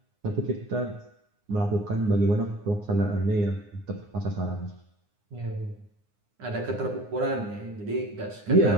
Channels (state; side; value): late; left; 9.7 ms